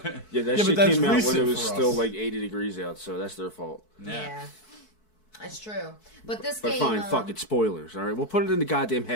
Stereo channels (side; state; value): right; late; 4.6 ms